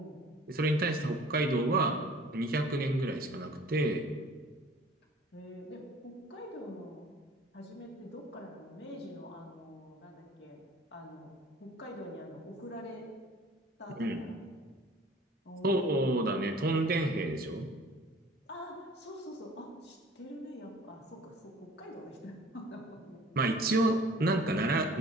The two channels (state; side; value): normal; both; correlation 0.50